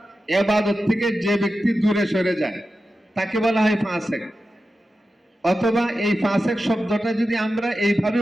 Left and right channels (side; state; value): both; normal; correlation 0.92